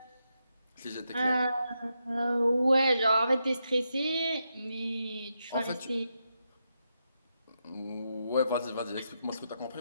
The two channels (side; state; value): both; inverted; correlation -0.84